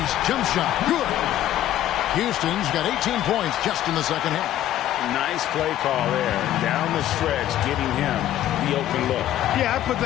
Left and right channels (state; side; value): quieter; right; 12.6 dB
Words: jump shot. Good. Houston's got 18 points just in the second half. Nice play call there. Down the stretch, getting him the open look. Yeah, I put